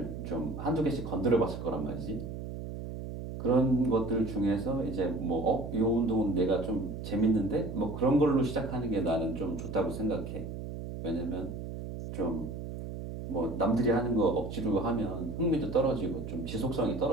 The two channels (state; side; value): noise; right; hum, 8 dB below the sound